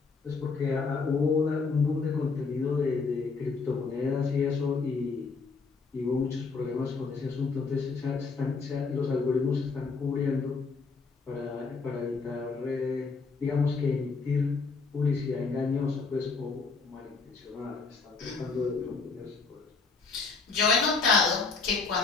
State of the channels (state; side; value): quieter; right; 4.5 dB